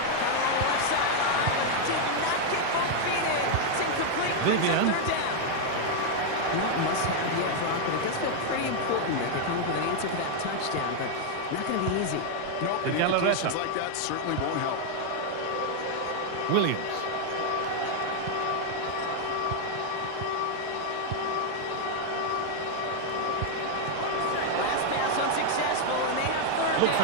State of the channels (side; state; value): both; different; correlation 0.00